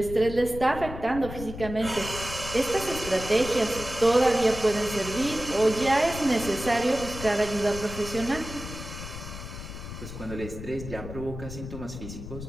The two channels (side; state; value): left; noise; rumble, 10 dB below the sound